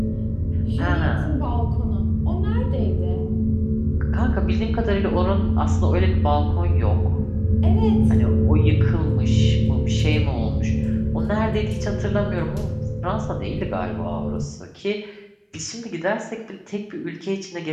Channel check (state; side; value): identical; both; correlation 1.00